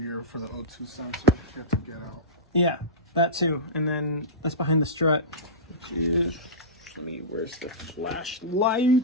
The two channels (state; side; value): normal; both; correlation -0.17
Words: for the O2 sensor that you have to get out. Yeah, that too. And then that's behind the strut, which is, where's the